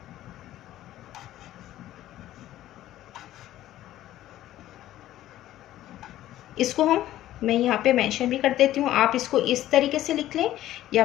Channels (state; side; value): quieter; right; 13.8 dB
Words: इसको मैं यहाँ पे मेंशन भी कर देती हूँ। आप इसको इस तरीके से लिख लें या